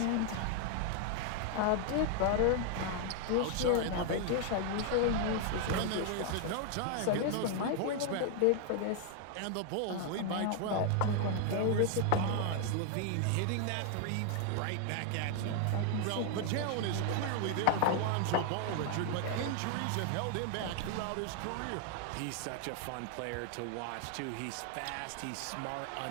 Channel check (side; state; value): both; different; correlation 0.00